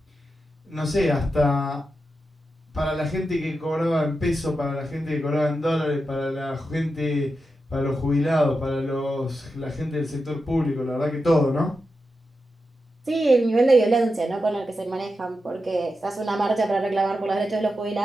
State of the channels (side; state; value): both; normal; correlation 0.89